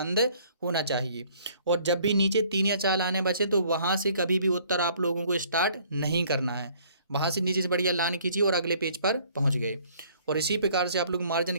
होना चाहिए। और जब भी नीचे 3 या 4 लाइनें बचे, तो वहाँ से कभी भी उत्तर आप लोगों को स्टार्ट नहीं करना है। वहाँ से नीचे से बढ़िया लाइन खींची और अगले पेज पर पहुँच गए। और इसी प्रकार से आप लोग मार्जिन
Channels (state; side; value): inverted; both; correlation -0.59